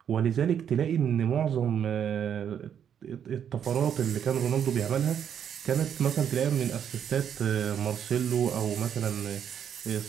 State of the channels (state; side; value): quieter; left; 8.6 dB